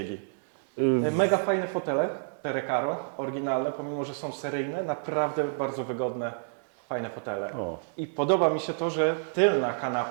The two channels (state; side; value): silent; left; digital silence